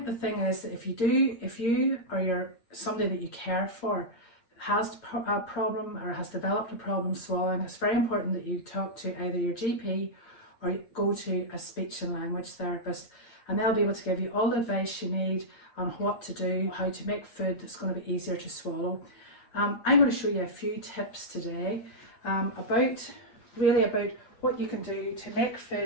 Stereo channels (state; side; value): late; right; 8.7 ms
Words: the thing is that if you or you're somebody that you care for has a problem or has developed a problem swallowing, it's very important that you talk to either your GP or go to a speech and language therapist, and they'll be able to give you all the advice you need on what to do, how to make food that's going to be easier to swallow. I'm going to show you a few tips today about what you can do to make